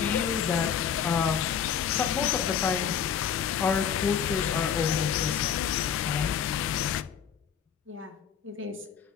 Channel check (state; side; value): quieter; right; 8.0 dB